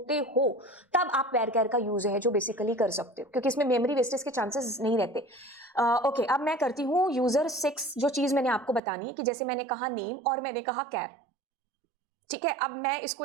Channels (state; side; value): drops out; left; at 8.8 s